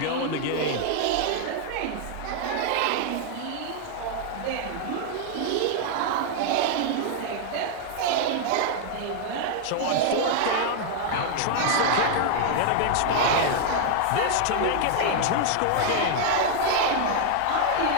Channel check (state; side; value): different; both; correlation 0.00